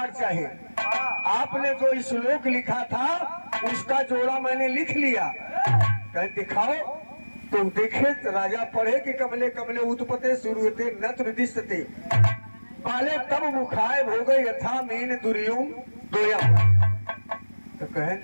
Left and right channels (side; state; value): both; inverted; correlation -1.00